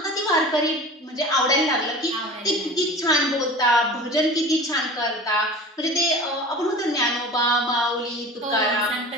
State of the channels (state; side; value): normal; both; correlation 0.38